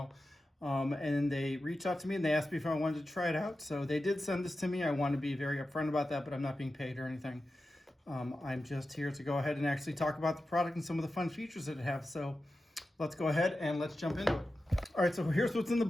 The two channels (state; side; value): normal; both; correlation 0.92